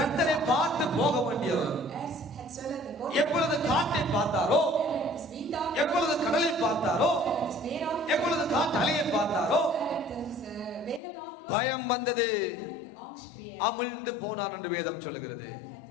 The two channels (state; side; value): drops out; right; at 11.0 s